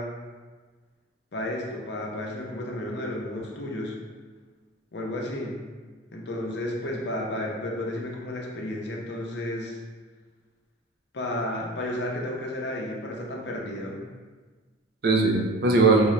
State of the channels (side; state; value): both; normal; correlation 0.35